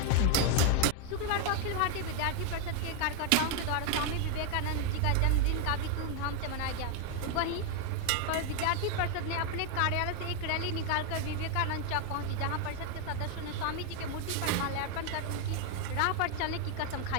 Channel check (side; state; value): both; different; correlation 0.01